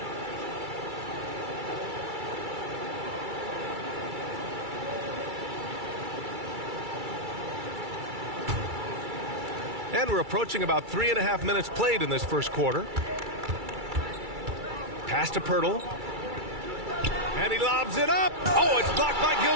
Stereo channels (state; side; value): late; left; 2.3 ms